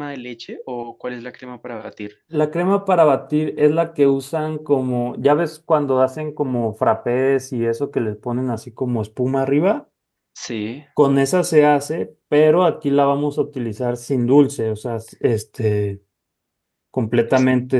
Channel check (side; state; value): both; identical; correlation 1.00